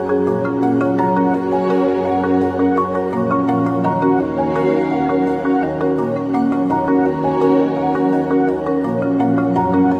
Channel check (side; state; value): both; identical; correlation 1.00